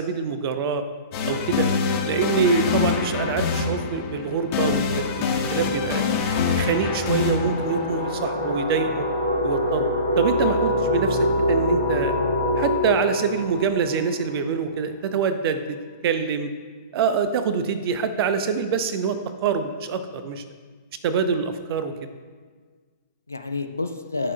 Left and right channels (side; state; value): both; inverted; correlation -0.35